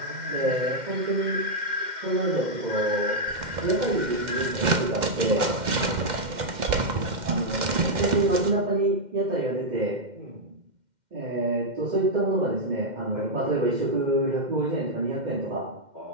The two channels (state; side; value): late; left; 2.1 ms